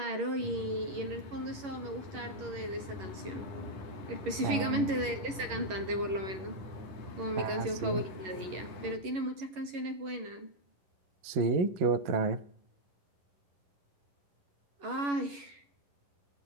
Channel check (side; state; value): left; late; 11 ms